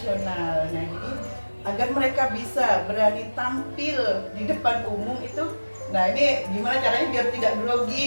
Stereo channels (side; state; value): both; inverted; correlation -1.00